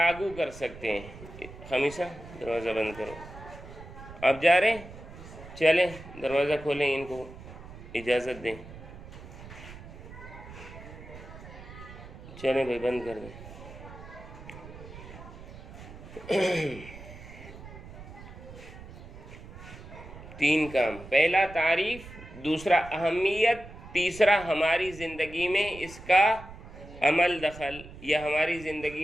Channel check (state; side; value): noise; right; rumble, 15 dB below the sound